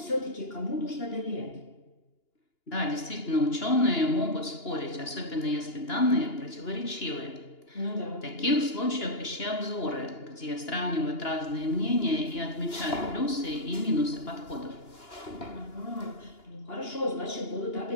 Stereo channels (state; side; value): late; right; 2.9 ms